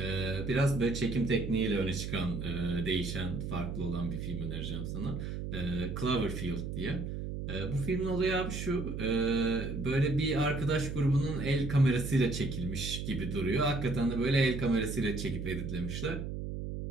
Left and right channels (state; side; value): noise; right; hum, 5 dB below the sound